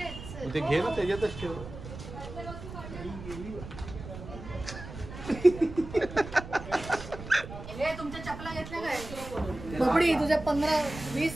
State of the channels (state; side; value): noise; right; rumble, 12 dB below the sound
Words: मग ते घे ना, त्याच्यातच ठेव. हे तुमच्या चपला घेतल्या काय बबडी? तुझ्या 15, 20,